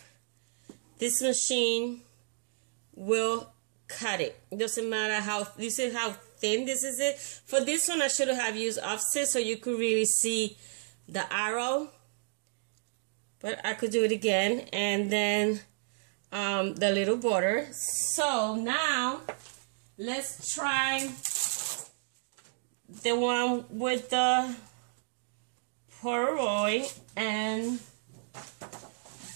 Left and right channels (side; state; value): left; silent; digital silence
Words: This machine will cut it. It doesn't matter how, this is how thin this is it. For this one, I should have used offset so you could really see the arrow. But I could do it again. And then the little border. So now, let's try the one with the Polaroid and